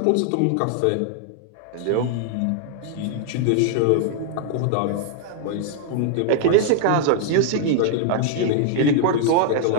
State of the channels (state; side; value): different; both; correlation 0.00